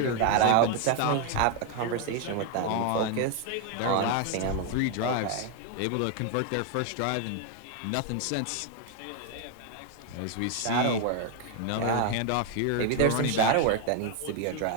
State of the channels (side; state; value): both; different; correlation 0.01